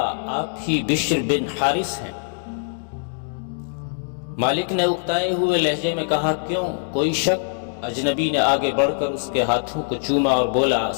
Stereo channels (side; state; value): right; silent; digital silence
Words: آپ ہی بشر بن حارث ہیں؟ مالک نے اکتائے ہوئے لہجے میں کہا، کیوں، کوئی شک؟ اجنبی نے آگے بڑھ کر اس کے ہاتھوں کو چوما اور بولا،